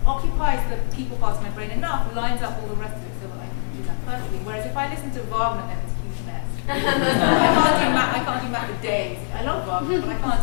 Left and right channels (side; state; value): right; silent; 64 dB below the other